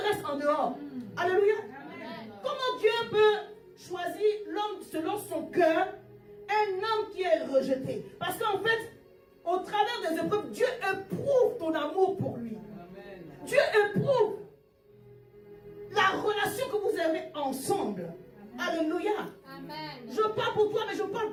restent en dehors. Alléluia. Amen. Comment Dieu peut choisir l'homme selon son cœur, un homme qui est rejeté? Parce qu'en fait, au travers des épreuves, Dieu éprouve ton amour pour lui. Amen. Dieu éprouve la relation que vous avez ensemble. Alléluia. Amen. Je parle pour toi, mais je parle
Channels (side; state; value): both; identical; correlation 1.00